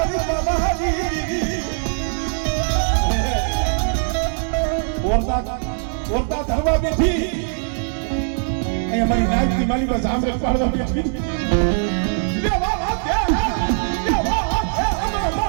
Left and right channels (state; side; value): silent; left; 64 dB below the other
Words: બાબાજી ઓરતા ધરવા બેઠી અહીંયા મારી નાયકની માલી બસ આમરે પાડવા બેઠી